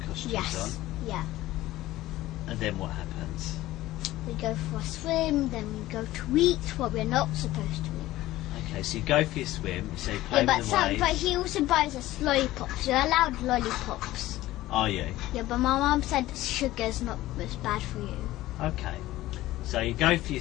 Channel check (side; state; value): right; quieter; 16.2 dB